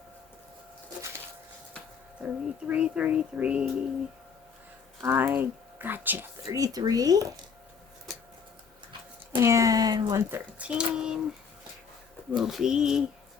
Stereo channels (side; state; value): right; quieter; 6.2 dB